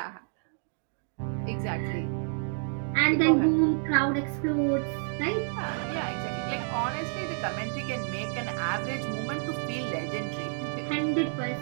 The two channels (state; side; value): silent; left; 58 dB below the other